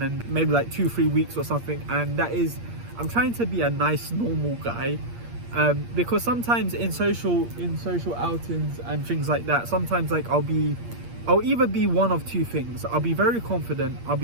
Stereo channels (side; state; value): left; late; 8.5 ms